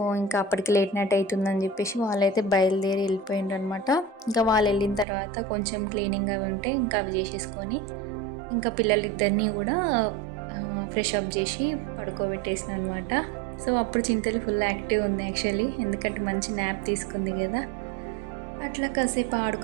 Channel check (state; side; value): drops out; left; at 5.1 s